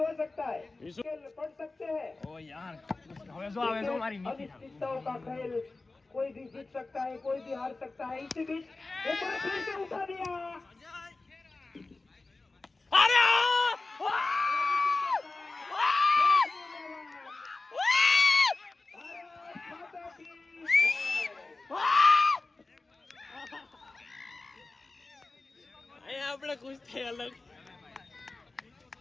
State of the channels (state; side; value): quieter; right; 3.4 dB